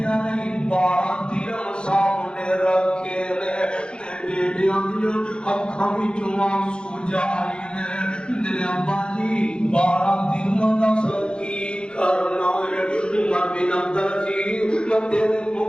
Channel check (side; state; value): right; late; 0.052 ms